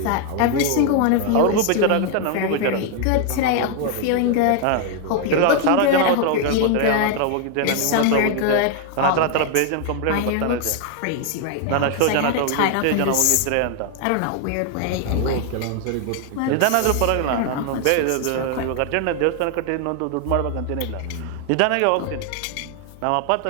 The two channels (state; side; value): different; both; correlation 0.00